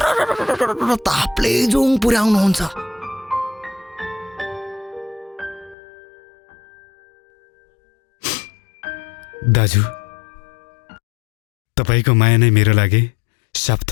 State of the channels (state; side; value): drops out; right; at 5.8 s